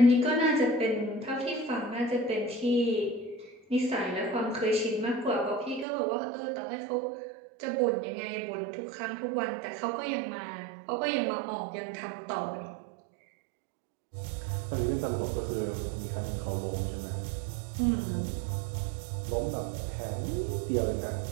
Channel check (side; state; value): left; drops out; at 5.9 s